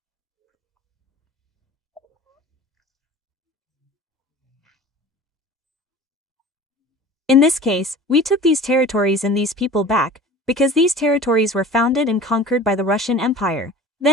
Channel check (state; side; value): normal; both; correlation 0.40